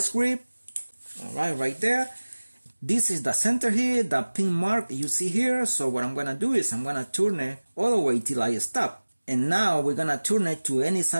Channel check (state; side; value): inverted; both; correlation -1.00